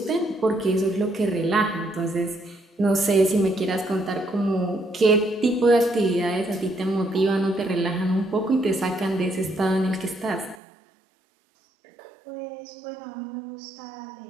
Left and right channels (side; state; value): left; drops out; at 10.6 s